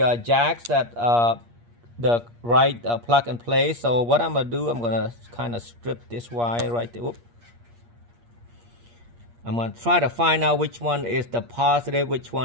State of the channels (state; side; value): late; left; 8.5 ms